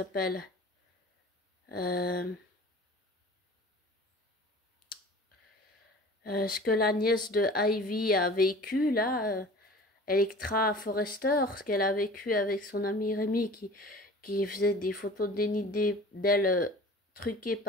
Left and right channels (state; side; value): normal; both; correlation 0.42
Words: Euh, ce que la nièce de Ivy a vécu là, Electra Forrester, ce qu'elle a vécu avec son ami Rémi qui faisait des photos dénudées d'elle truquées